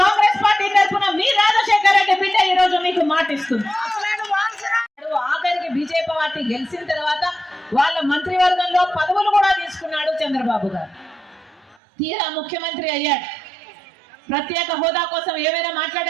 కాంగ్రెస్ పార్టీ తరఫున మీ రాజశేఖర రెడ్డి బిడ్డ ఈ రోజు మీకు మాటిస్తుంది. ఆఖరికి బీజేపీ పార్టీ గెలిచిన తర్వాత వాళ్ళ మంత్రివర్గంలో పదవులు కూడా తీసుకున్నాడు చంద్రబాబు గారు. తీరా ముఖ్యమంత్రి అయ్యాడు. ప్రత్యేక హోదా కోసం ఏమైనా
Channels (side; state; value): left; drops out; at 11.8 s